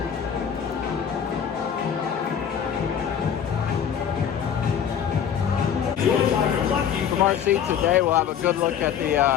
From our seat today, we'll have a good look at the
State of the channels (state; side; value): quieter; right; 8.4 dB